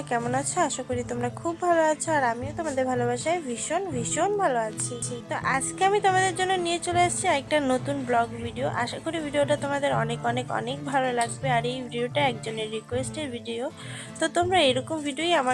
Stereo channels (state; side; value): identical; both; correlation 1.00